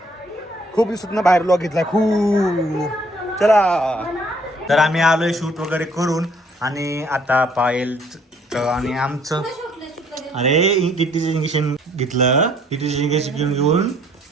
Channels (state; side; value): normal; both; correlation 0.62